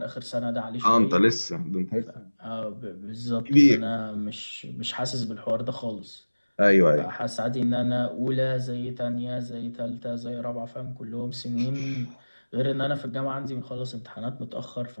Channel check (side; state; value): both; inverted; correlation -1.00